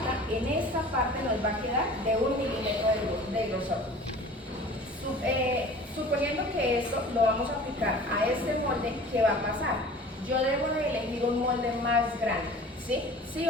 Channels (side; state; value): both; normal; correlation 0.44